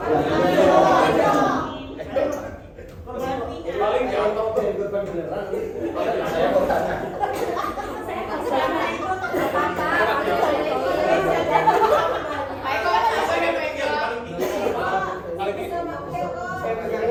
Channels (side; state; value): both; identical; correlation 1.00